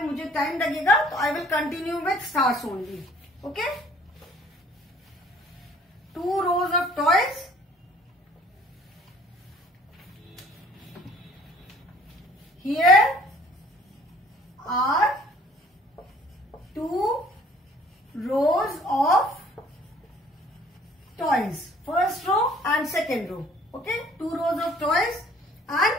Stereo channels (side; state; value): both; normal; correlation 0.55